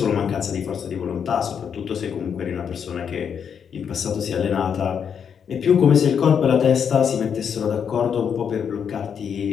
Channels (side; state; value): right; quieter; 7.4 dB